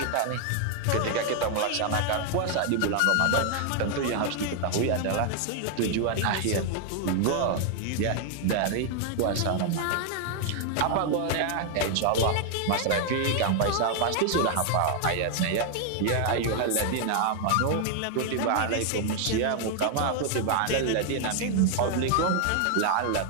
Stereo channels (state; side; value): different; both; correlation 0.00